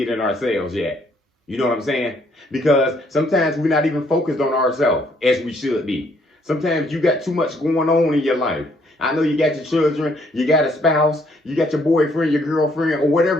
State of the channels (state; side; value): normal; both; correlation 0.67